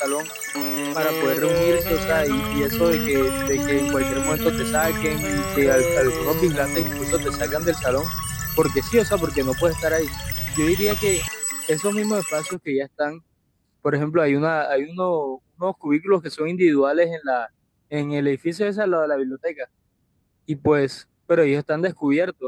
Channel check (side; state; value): both; identical; correlation 1.00